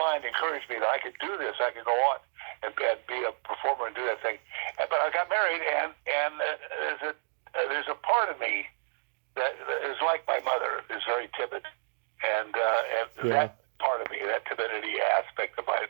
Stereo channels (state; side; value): silent; left; digital silence